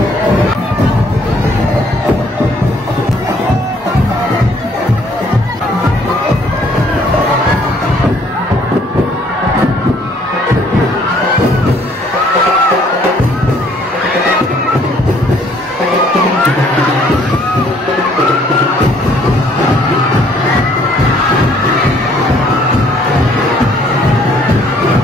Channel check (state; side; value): normal; both; correlation 0.62